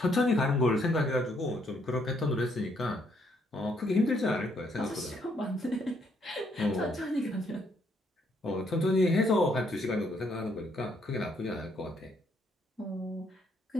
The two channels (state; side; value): normal; both; correlation 0.71